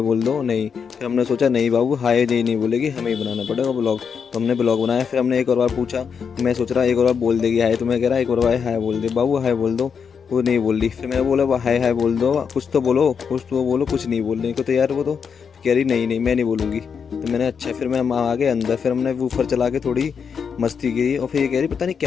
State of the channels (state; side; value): quieter; right; 6.5 dB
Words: दो नहीं। फिर हमने सोचा नहीं बाबू हाय नहीं बोलेगी, हमें ही बनाना पड़ेगा ब्लॉग। तो हमने ब्लॉग बनाया। फिर हमने एक और बार पूछा। मैं सोच रहा एक और बार बोल देगी हाय, तो मैं कह रहा एक और बार हाय बोल दे बाबू, हाय बोल दो। वो नहीं बोल रही। फिर मैंने बोला हाय हाय बोल दो, कुछ तो बोलो, कुछ तो बोलो। कुछ नहीं बोलने को तैयार। वो तो कह रही नहीं मैं नहीं बोलूँगी। तो मैंने अच्छा, फिर मैं आ गए अंदर। फिर हमने वूफर चला के थोड़ी मस्ती की। और फिर ये कह रही पता नहीं